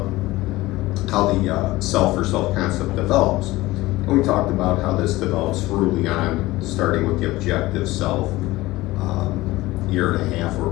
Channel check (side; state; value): right; quieter; 18.8 dB